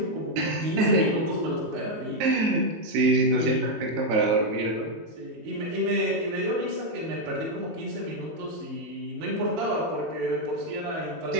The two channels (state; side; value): late; left; 19 ms